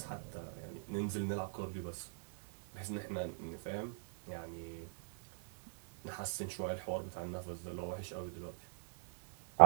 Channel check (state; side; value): silent; left; digital silence